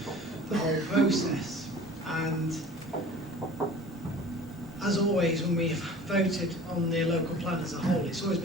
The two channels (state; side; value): normal; both; correlation 0.44